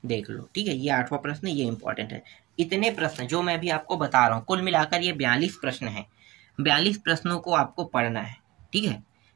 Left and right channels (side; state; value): left; quieter; 19.9 dB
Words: देख लो, ठीक है। ये 8वां प्रश्न, ये इम्पोर्टेंट है। इतने प्रश्न जो मैं भी आपको बता रहा हूँ, कुल मिलाकर ये 42 प्रश्न हैं। 42 प्रश्नों को आपको पढ़ना है, ठीक है।